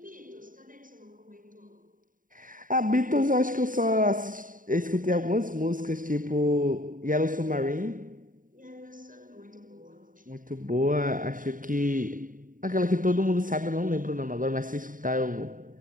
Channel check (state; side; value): late; left; 0.39 ms